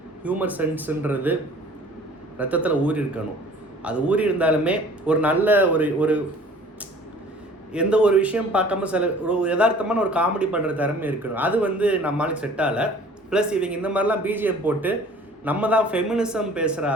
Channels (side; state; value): both; normal; correlation 0.50